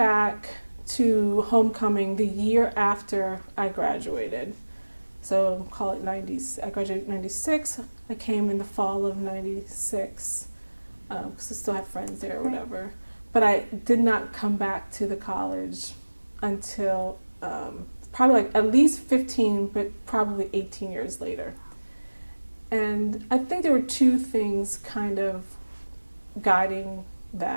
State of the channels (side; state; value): both; inverted; correlation -1.00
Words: to homecoming the year after I graduated. So call it 90s. I graduated in 96. I came in the fall of 96 because I still had friends there or whatever. But I did not come back to the college until probably like at least 15, but probably 18 years later. And I think there were two things kind of guiding